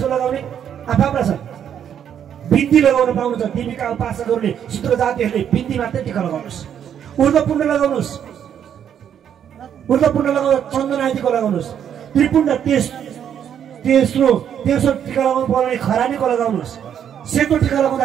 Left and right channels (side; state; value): left; quieter; 9.0 dB